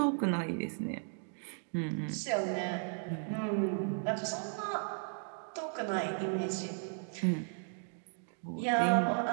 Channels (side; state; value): left; silent; 54 dB below the other